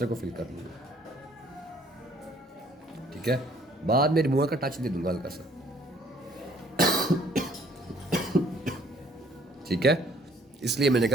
को फिल कर लूँगा। ठीक है, बाद में रिमूवर का टच दे दूंगा हल्का सा। ठीक है, इसलिए मैंने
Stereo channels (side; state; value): both; normal; correlation 0.60